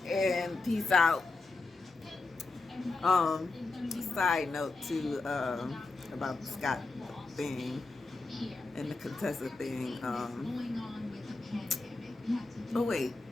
and peace out. Side note too, about the Scott thing and the Contessa thing. Oh wait,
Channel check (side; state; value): right; quieter; 3.5 dB